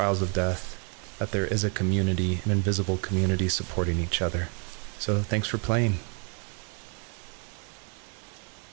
of death, that there is a community, an invisible community supporting each other. So thanks for playing.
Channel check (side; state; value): left; quieter; 37.6 dB